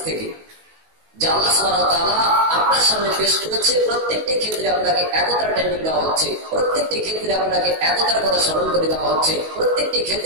থেকে, যা আল্লাহ সুবহানাহু ওয়া তাআলা আপনার সামনে পেশ করেছে। প্রত্যেকটি ক্ষেত্রে আপনাকে একতার ট্রেনিং দেওয়া হচ্ছে, প্রত্যেকটি ক্ষেত্রে আপনাকে একতার কথা স্মরণ করে দেওয়া হচ্ছে, প্রত্যেকটি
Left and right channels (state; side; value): late; left; 19 ms